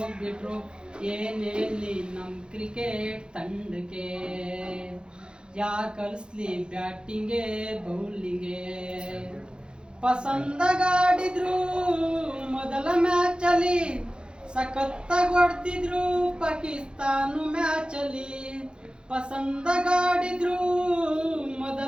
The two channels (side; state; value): left; late; 0.050 ms